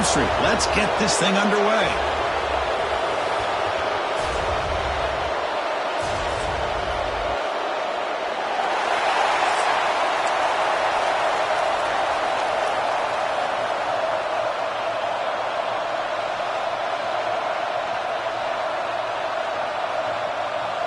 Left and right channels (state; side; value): identical; both; correlation 1.00